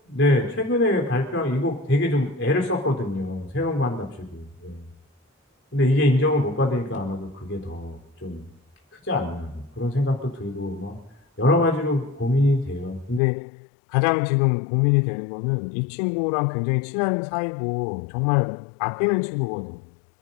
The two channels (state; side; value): drops out; right; at 13.2 s